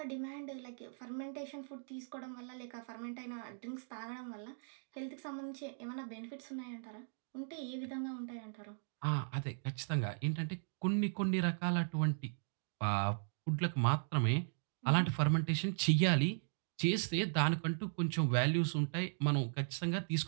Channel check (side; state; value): left; silent; digital silence